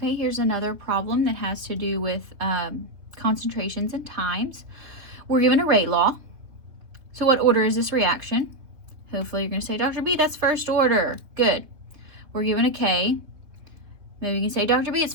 here's another problem that has to do with concentrations and times. We're given a rate law. So what order is this reaction? Hopefully you're going to say, Dr. B, that's first order. Good. We're given a K. Maybe you can say, Dr. B, it's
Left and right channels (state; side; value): late; left; 3.3 ms